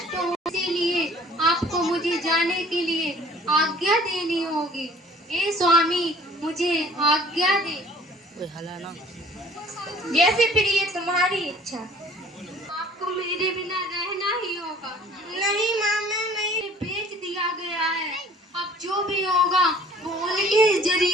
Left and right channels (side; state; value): both; normal; correlation 0.52